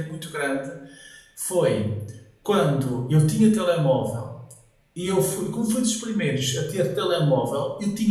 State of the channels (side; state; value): both; identical; correlation 1.00